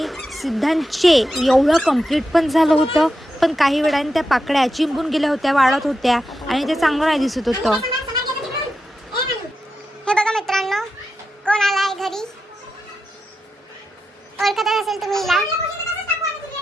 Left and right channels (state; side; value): normal; both; correlation 0.88